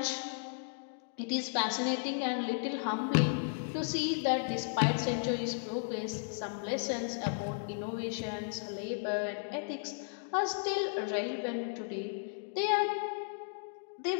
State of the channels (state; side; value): silent; right; digital silence